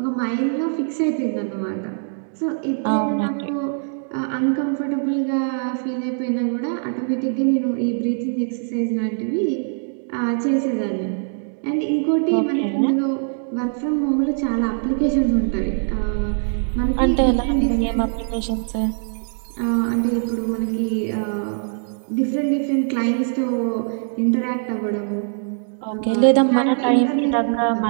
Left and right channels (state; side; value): silent; left; digital silence